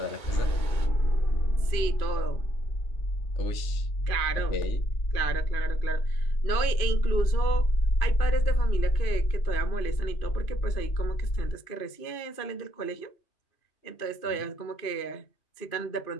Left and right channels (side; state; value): right; late; 2.5 ms